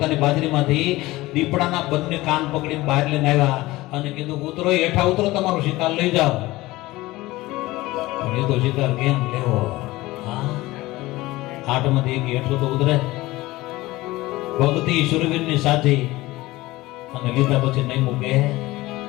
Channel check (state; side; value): quieter; right; 19.1 dB